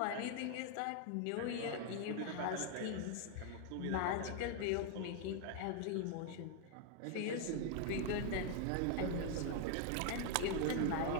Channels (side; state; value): both; different; correlation 0.00